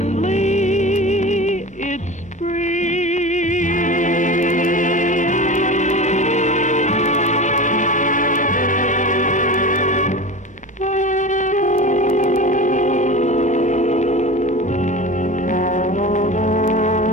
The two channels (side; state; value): both; normal; correlation 0.31